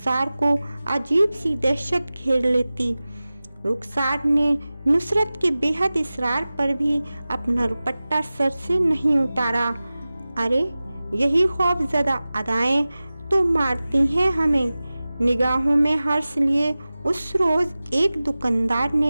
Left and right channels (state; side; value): inverted; both; correlation -0.97